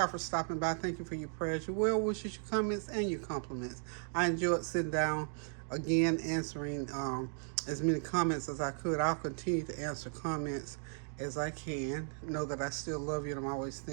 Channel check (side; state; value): left; silent; 54 dB below the other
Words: for stopping by. Thank you for your prayers, your well wishes, your comments, and your compliments. I enjoyed sitting down again, answering as many comments as I could. I'll continue to answer comments as I can. Know that I still love you, and I'm always